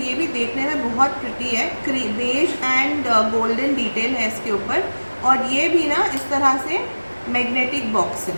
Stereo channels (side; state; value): both; inverted; correlation -1.00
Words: ये भी देखने में बहुत प्रिटी है। बेज एंड गोल्डन डिटेल है इसके ऊपर और ये भी ना इस तरह से मैग्नेटिक बॉक्स है,